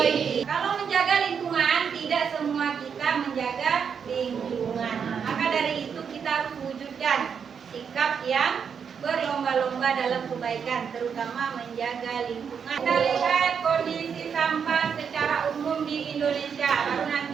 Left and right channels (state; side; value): quieter; left; 6.9 dB